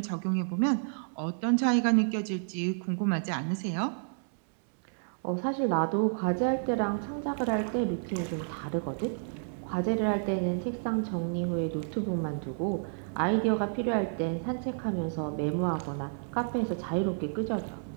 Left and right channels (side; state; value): left; silent; digital silence